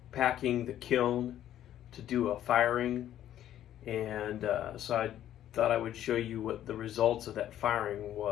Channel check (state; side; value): quieter; right; 11.7 dB